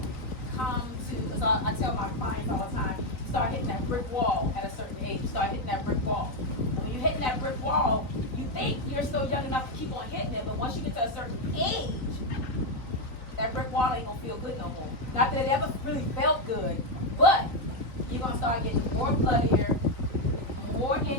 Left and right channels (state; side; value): late; right; 3.9 ms